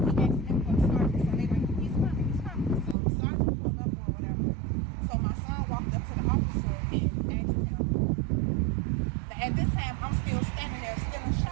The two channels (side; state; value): left; drops out; at 3.0 s